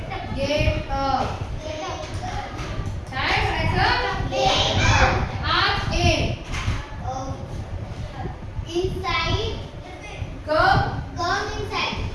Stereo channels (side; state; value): both; identical; correlation 1.00